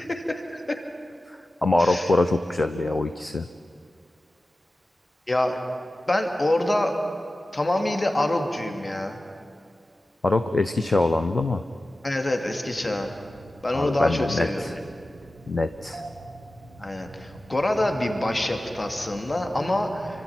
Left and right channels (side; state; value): both; normal; correlation 0.95